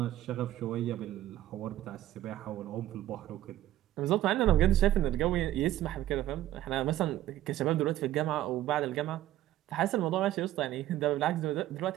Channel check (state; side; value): quieter; left; 13.7 dB